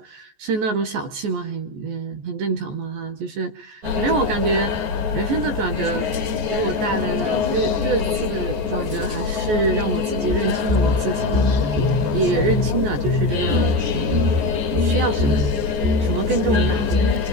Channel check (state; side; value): late; left; 14 ms